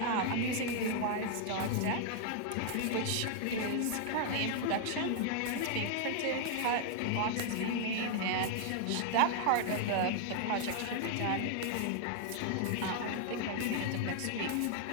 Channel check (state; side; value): different; both; correlation 0.00